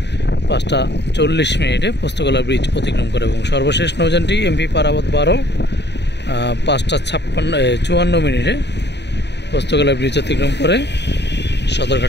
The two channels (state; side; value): late; right; 0.50 ms